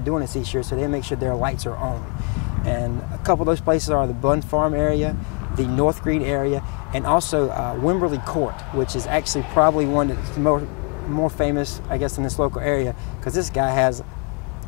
doing this each year, so they make sure their lights are on. And a couple of those places are the Bun Farm area, the North Green area, and also Wimberley Court, which is actually probably one that's more famous, I guess, in this local area, because this guy has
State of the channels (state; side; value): quieter; right; 33.5 dB